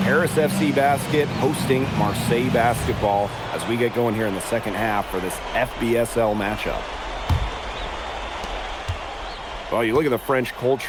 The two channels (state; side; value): identical; both; correlation 1.00